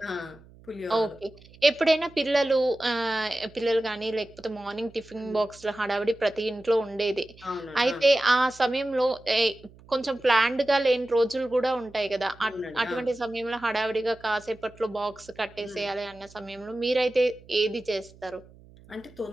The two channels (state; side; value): noise; right; hum, 24 dB below the sound